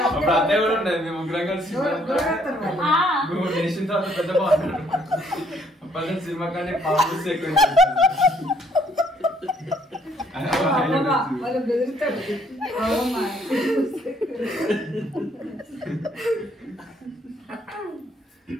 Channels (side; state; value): both; normal; correlation 0.65